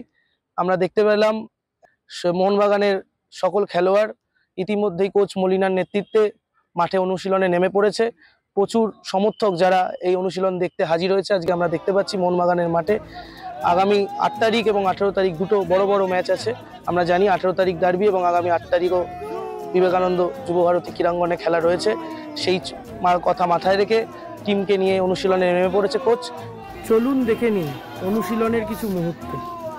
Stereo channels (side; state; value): both; identical; correlation 1.00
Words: আমরা দেখতে পেলাম মোহনবাগানের সকল খেলোয়াড় ইতিমধ্যেই কোচ মলিনার নেতৃত্বে মাঠে অনুশীলনে নেমে পড়েছে। প্রচুর সমর্থক যারা এই অনুশীলন দেখতে হাজির হয়েছে। আজকে আমরা দেখতে পাচ্ছি মোহনবাগানের মাঠে আগামী 8 তারিখ এবং 18 তারিখ দুটো বড় বড় ম্যাচ আছে। আমরা জানি 18 তারিখ ডার্বি এবং আগামী 8 তারিখও বিবেকানন্দ যুবভারতী ক্রীড়াঙ্গনে খেলা রয়েছে। সেই কথা মাথায় রেখে টিমকে নিয়ে অনুশীলনে নেমে পড়েছে কোচ। চলুন দেখে নিন অনুশীলনের কিছু মুহূর্ত,